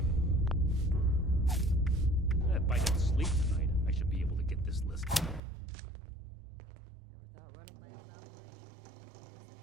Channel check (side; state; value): left; drops out; at 5.4 s